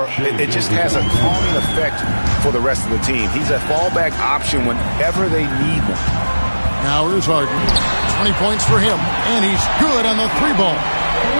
it just has a calming effect for the rest of the team. He's a fallback option whenever they need one. Now here's Harden. 20 points for him. And he's good on the 3-ball.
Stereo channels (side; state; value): both; inverted; correlation -1.00